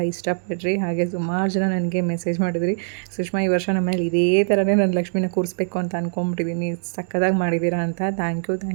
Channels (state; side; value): silent; left; digital silence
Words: ಇಷ್ಟಪಡ್ರಿ. ಹಾಗೆ ಸುಮಾರು ಜನ ನನಗೆ ಮೆಸೇಜ್ ಮಾಡಿದ್ರಿ, ಸುಷ್ಮಾ ಈ ವರ್ಷ ನಮ್ಮನೇಲಿ ಇದೇ ಥರನೇ ನಾನು ಲಕ್ಷ್ಮಿನ ಕೂರಿಸ್ಬೇಕು ಅಂತ ಅಂದ್ಕೊಂಬಿಟ್ಟಿದ್ದೀನಿ, ಸಕ್ಕದಾಗಿ ಮಾಡಿದ್ದೀರಾ ಅಂತ. Thank